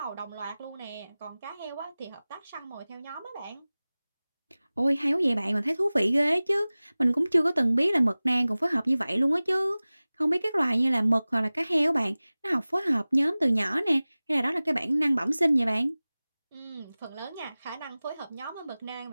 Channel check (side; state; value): both; inverted; correlation -0.98